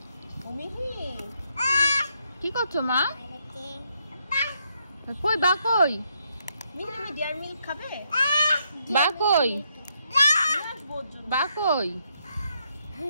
কি করছো মা? কই বা, কই তুমি ডিয়ার মিল্ক খাবে? বা কই, বা কই?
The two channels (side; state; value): both; inverted; correlation -0.76